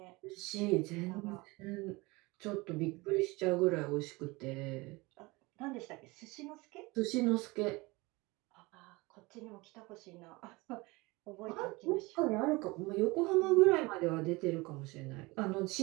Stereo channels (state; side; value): quieter; left; 23.6 dB